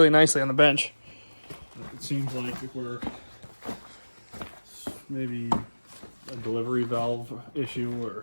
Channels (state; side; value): inverted; both; correlation -1.00